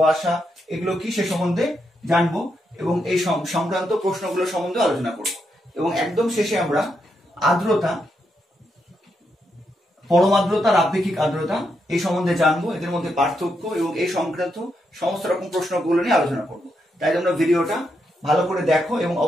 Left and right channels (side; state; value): both; normal; correlation 0.81